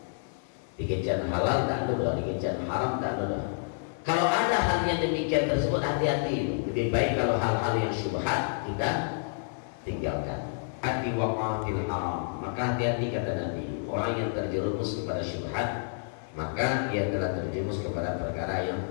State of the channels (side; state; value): right; silent; digital silence